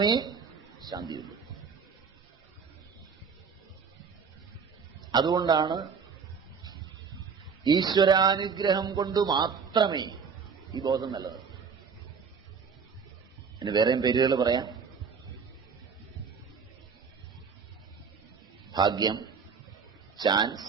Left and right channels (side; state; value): left; quieter; 5.9 dB